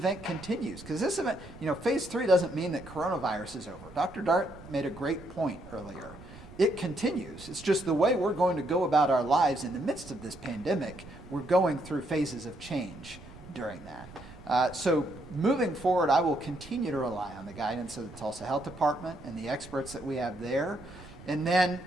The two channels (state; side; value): noise; right; rumble, 18 dB below the sound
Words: continues. Because this event, phase 3 doesn't mean that coronavirus is over. Dr. Dart made a great point earlier. It continues. It's just the way we're going to go about our lives in the midst of this pandemic. We're going through phases of change during that. So moving forward, I will continue to rely on the guidance of the Tulsa Health Department and the experts that we have there. And then,